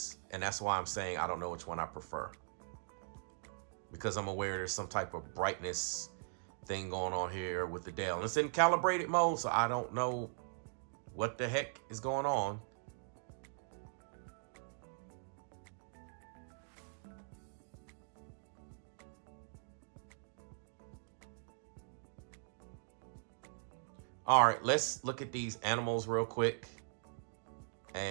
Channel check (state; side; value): silent; left; digital silence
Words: And that's why I'm saying I don't know which one I prefer. Because I'm aware there's some type of brightness thing going on here with the Dell. It's in calibrated mode, so I don't know what the heck is going on. All right, let's look at these animals real quick.